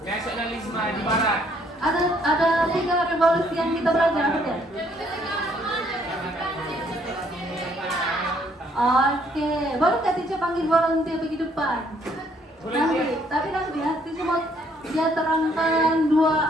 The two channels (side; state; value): both; normal; correlation 0.66